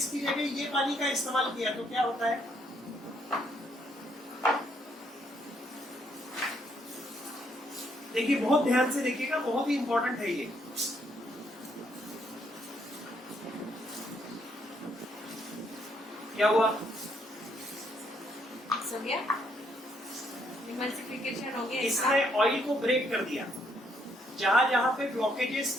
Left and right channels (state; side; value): normal; both; correlation 0.71